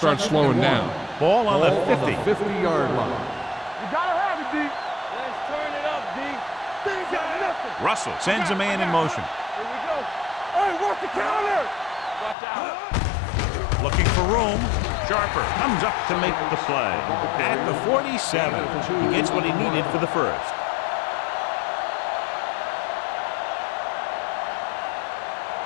slowing down. Ball on the 50. 50-yard line. You gotta have it, D. Let's turn it up, D. Things got nothing. Russell sends a man in motion. Here we go. Hey, watch the counter. Watch out. Looking for room. Sharper comes up to make the play. At the 47. He gets what he needed for the first.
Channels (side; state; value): right; drops out; at 12.4 s